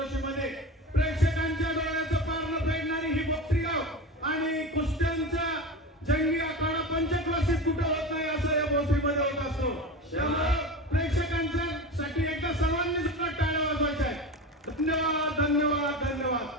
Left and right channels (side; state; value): both; normal; correlation 0.26